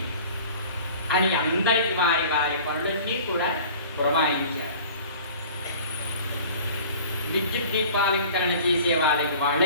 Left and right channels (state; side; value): inverted; both; correlation -0.45